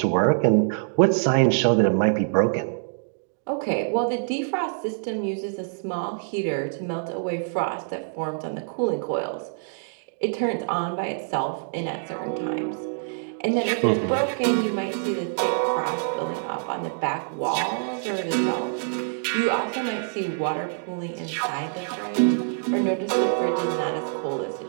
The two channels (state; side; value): silent; left; digital silence